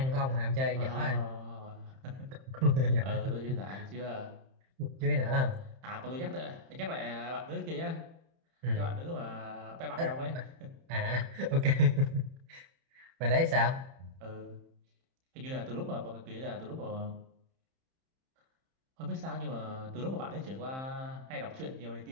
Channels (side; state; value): left; late; 31 ms